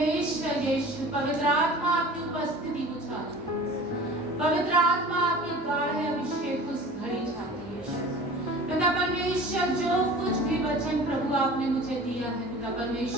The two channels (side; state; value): both; normal; correlation 0.41